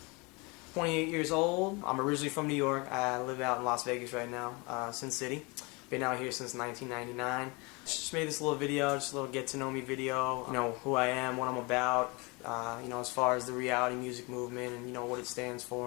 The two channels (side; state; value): right; quieter; 27.9 dB